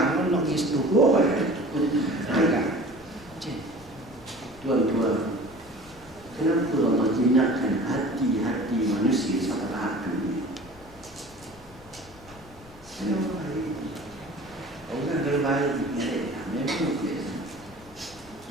nak pergi situ. Agak. Tuan-tuan, kenapa Allah jinakkan hati-hati manusia sampai tahap ini? Kenapa hari ini? Orang terbaik memang biasa.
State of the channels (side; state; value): left; noise; rumble, 21 dB below the sound